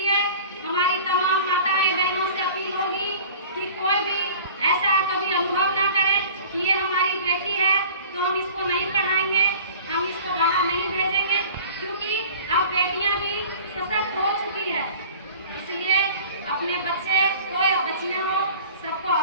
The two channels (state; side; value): inverted; both; correlation -0.43